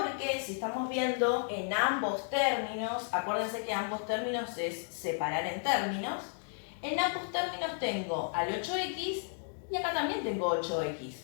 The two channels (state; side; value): silent; right; 56 dB below the other